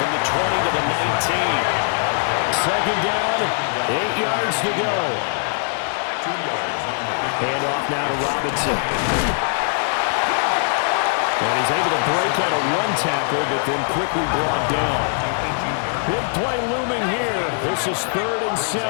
the 20 to the 19. 2nd down, 8 yards to go. 2 yards on the Hand off now to Robinson. And he's able to break out of 1 tackle, but then quickly brought down. Big play looming here. This is 3rd and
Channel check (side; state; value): right; silent; 65 dB below the other